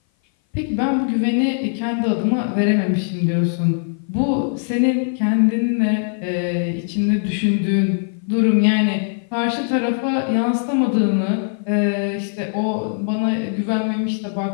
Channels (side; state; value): right; silent; 57 dB below the other